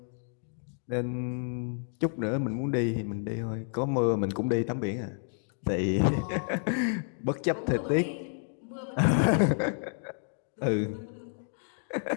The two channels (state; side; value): silent; right; 58 dB below the other